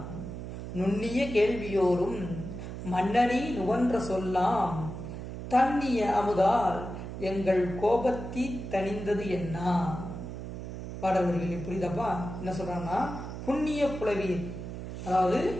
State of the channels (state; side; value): noise; right; hum, 8 dB below the sound